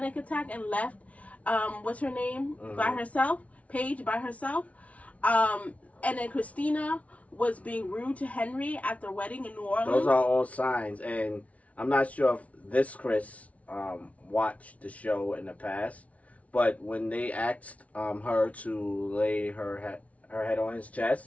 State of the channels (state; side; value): late; right; 0.066 ms